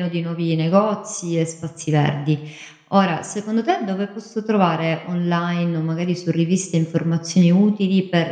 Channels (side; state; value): both; identical; correlation 1.00